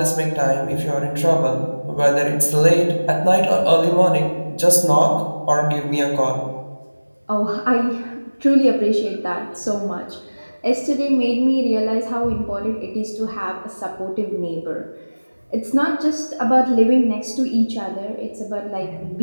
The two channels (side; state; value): both; inverted; correlation -1.00